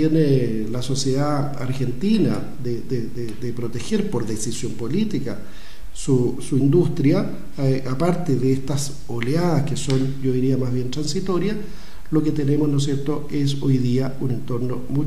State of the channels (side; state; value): both; identical; correlation 1.00